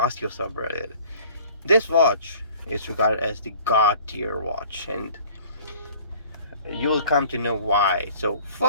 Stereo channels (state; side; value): inverted; both; correlation -0.51